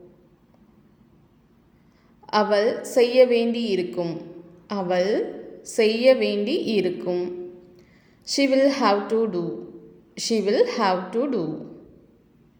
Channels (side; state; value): both; identical; correlation 1.00